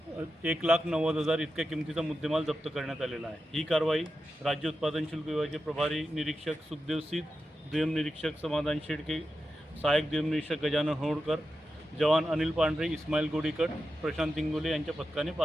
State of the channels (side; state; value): both; normal; correlation 0.90